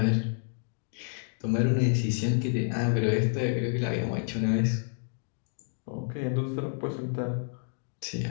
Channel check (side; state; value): right; silent; digital silence